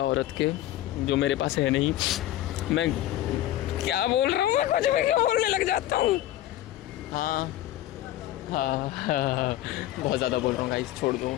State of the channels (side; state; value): right; quieter; 13.9 dB